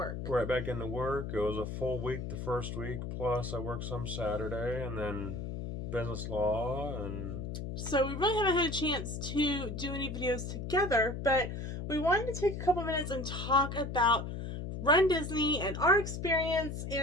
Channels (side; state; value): left; noise; hum, 5 dB below the sound